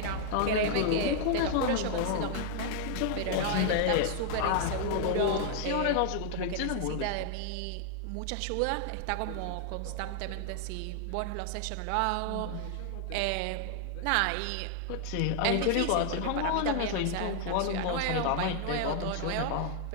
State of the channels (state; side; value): different; both; correlation 0.00